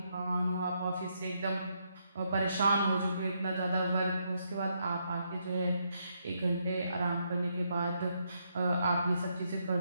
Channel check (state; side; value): inverted; both; correlation -0.77